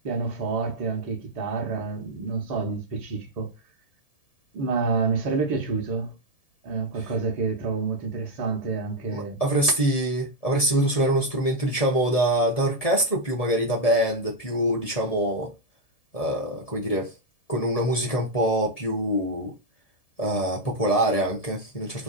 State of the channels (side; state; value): right; late; 1.7 ms